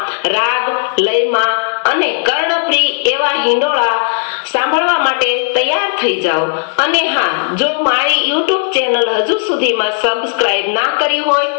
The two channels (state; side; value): silent; right; digital silence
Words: રાગ લયમાં અને કર્ણપ્રિય એવા હિંડોળા સાંભળવા માટે તૈયાર થઈ જાઓ। અને હા, જો મારી યુટ્યુબ ચેનલ હજુ સુધીમાં સબસ્ક્રાઇબ ના કરી હોય